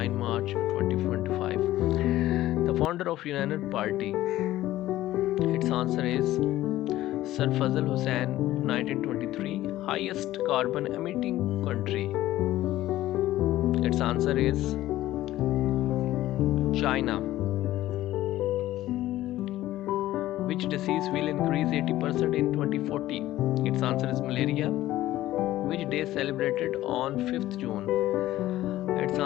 March 2025. The founder of United Party, its answer is Sir Fazl Hussain. 1923. Highest carbon emitting country, its answer is China. Which disease will increase 80% in 2040? Its answer is malaria. Which day is celebrated on 5th June? Its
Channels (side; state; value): right; quieter; 15.0 dB